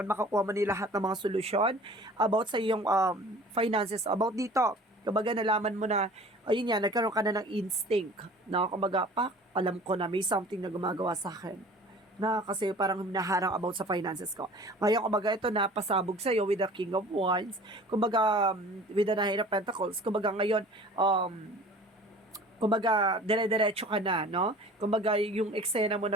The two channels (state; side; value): normal; both; correlation 0.45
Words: Makakuha mo ni lahat ng mga solusyon about sa iyong finances. About dito, kumbaga nalaman mo na, ayun yan, nagkaroon ka na ng instinct. Na kumbaga, alam ko na may something na gumagawa sa akin na kasi parang hinaharang about sa finances ko. Ngayon, kumbaga, ito na pasabog sa'yo with the King of Wands. Kumbaga, with the Nine of Pentacles. Kumbaga, ngayon, kumbaga, dire-diretso ka na, no? Kumbaga, yung eksena mo